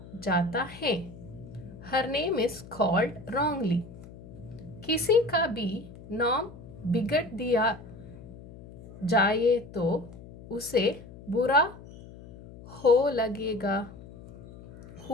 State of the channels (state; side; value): noise; left; hum, 17 dB below the sound